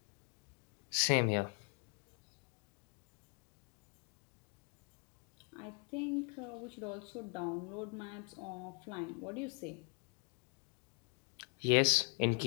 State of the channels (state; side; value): quieter; right; 37.5 dB